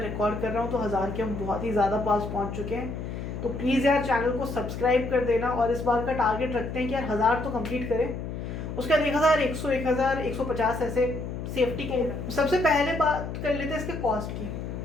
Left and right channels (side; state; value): left; noise; hum, 6 dB below the sound